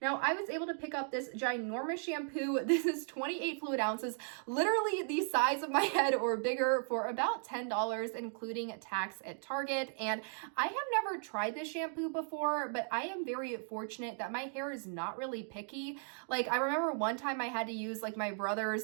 Now, I was able to pick up this ginormous shampoo. This is 28 fluid ounces, literally the size of my head or bigger, for about $10, including tax at Target. And I have never tried this shampoo before, but I am very fortunate that my hair is not really picky. Like, I remember one time I had to use like my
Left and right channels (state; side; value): silent; left; 54 dB below the other